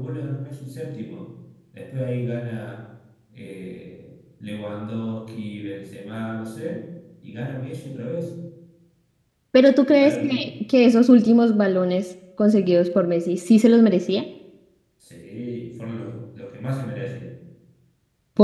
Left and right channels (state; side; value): identical; both; correlation 1.00